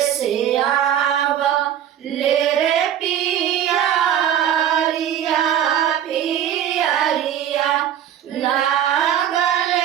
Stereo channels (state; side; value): quieter; left; 10.4 dB